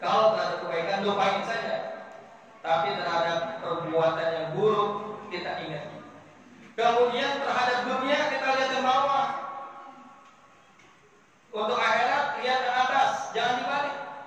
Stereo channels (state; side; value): identical; both; correlation 1.00